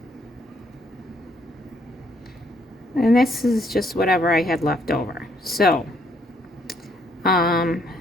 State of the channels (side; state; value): both; normal; correlation 0.69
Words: And this is just whatever I had left over. So,